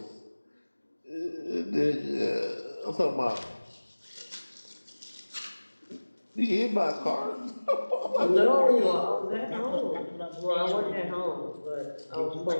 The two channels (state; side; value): inverted; both; correlation -1.00